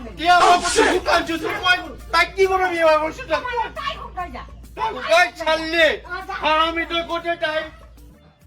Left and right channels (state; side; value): identical; both; correlation 1.00